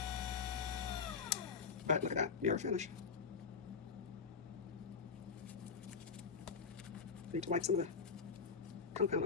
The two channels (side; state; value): right; quieter; 5.5 dB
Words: But look at that mirror finish. Need to wipe some of the compound